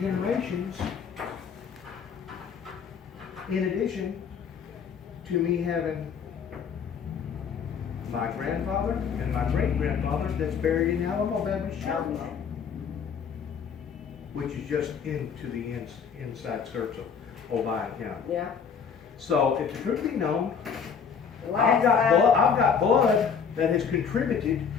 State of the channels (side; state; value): right; quieter; 6.6 dB